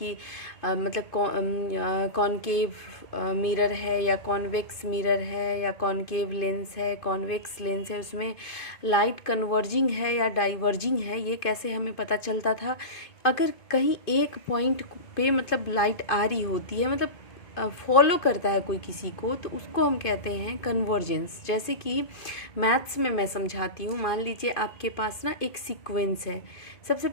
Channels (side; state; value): right; late; 2.5 ms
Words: कॉनकेव मिरर है या कॉन्वेक्स मिरर है या कॉनकेव लेंस है, कॉन्वेक्स लेंस है, उसमें लाइट कन्वर्जिंग है या डाइवर्जिंग है, ये कैसे हमें पता चलता था? अगर कहीं एक पॉइंट पे लाइट आ रही होती है, फॉलो करता है कोई किसी को, तो उसको हम कहते हैं कन्वर्जेंस। जैसे कि मैथ्स में मैं समझाती हूँ। मान लीजिए आपके पास ना एक सीक्वेंस है। सबसे